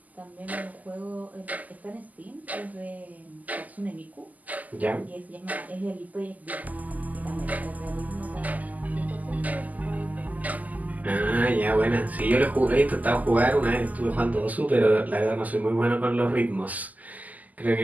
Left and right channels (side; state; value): left; late; 0.079 ms